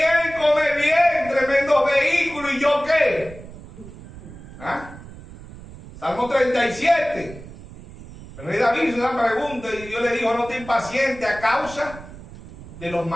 come bien, tremendos vehículos, ¿y yo qué? ¿Ah? Salmo 37. El rey David hizo una pregunta y Dios le dijo, no te impacientes a causa de los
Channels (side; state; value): right; noise; rumble, 16 dB below the sound